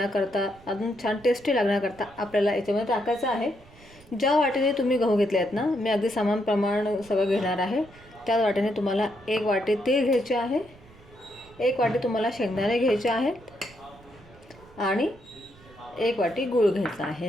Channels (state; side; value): noise; right; rumble, 24 dB below the sound